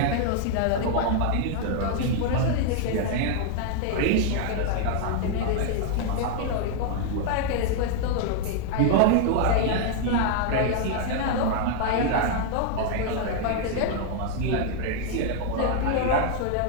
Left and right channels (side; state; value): both; different; correlation 0.00